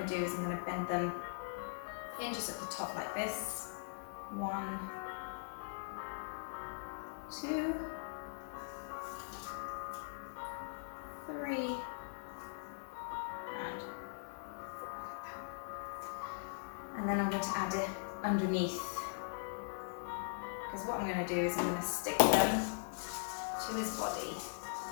to do is I'm going to bend them in just at the top like this. 1, 2, 3, and 4. And then I'm going to add it underneath, because what I'm going to do is I'm going to stick them to his body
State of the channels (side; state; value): right; silent; digital silence